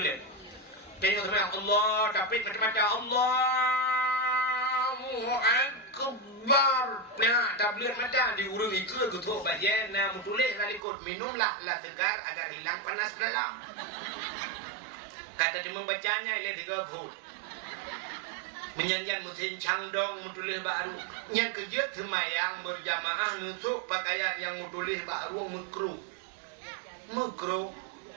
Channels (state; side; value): drops out; left; at 10.8 s